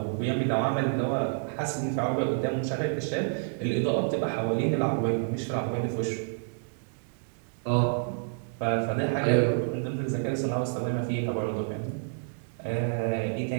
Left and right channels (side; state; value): left; silent; digital silence